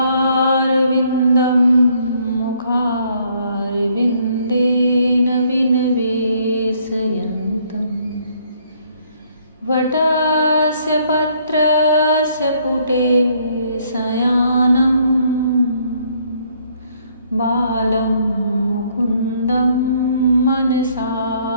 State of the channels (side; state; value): both; inverted; correlation -0.66